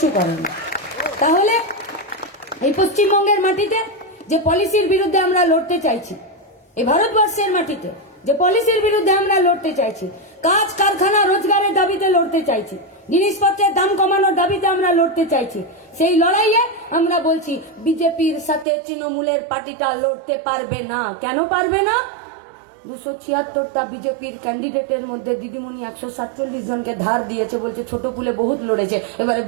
করেনি। তাহলে এই পশ্চিমবঙ্গের মাটিতে যে পলিসির বিরুদ্ধে আমরা লড়তে চাইছি, এই ভারতবর্ষের মাটিতে যে পলিসির বিরুদ্ধে আমরা লড়তে চাইছি, কাজ কারখানা রোজগারের দাবিতে লড়তে চাইছি, জিনিসপত্রের দাম কমানোর দাবিতে আমরা লড়তে চাইছি, সেই লড়াইয়ে আমরা বলছি বিজেপির সাথে তৃণমূলের পার্টিটা লড়তে পারবে না। কেন পারবে না? 276টা বিজেপির ক্যান্ডিডেটের মধ্যে দিদিমণি 147 জনকে ধার দিয়েছে, বলছে ছোট ফুলে বহুত লড়েছে, এবারে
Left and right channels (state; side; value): drops out; left; at 18.7 s